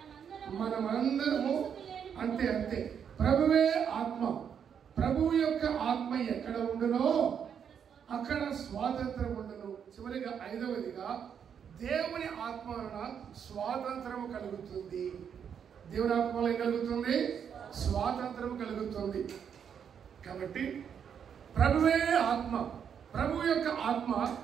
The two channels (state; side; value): quieter; left; 7.8 dB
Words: మనమందరము అంతే. ప్రభువే ఆత్మ, ప్రభువు యొక్క ఆత్మ ఎక్కడ ఉండునో అక్కడ స్వాతంత్రం ఉండను. చివరిగా ఐదవదిగా దేవుని ఆత్మ వలన స్వాతంత్రం కలుగుతుంది. దేవుని ఆత్మ వలన ఏం కలుగుతుంది? స్వాతంత్రం కలుగుతుంది. కాబట్టి ప్రభువే ఆత్మ, ప్రభు యొక్క ఆత్మ